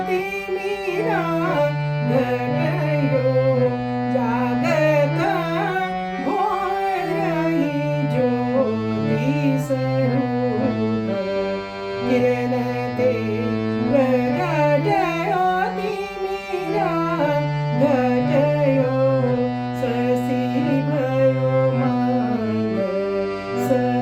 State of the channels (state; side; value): identical; both; correlation 1.00